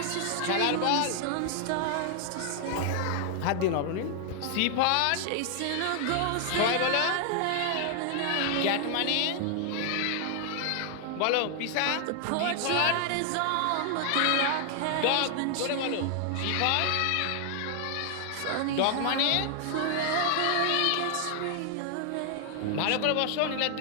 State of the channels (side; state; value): both; different; correlation 0.00